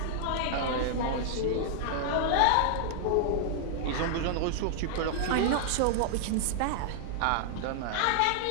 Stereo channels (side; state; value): both; different; correlation -0.01